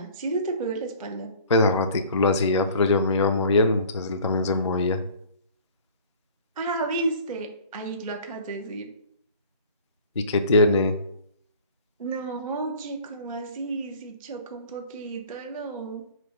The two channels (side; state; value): both; inverted; correlation -0.47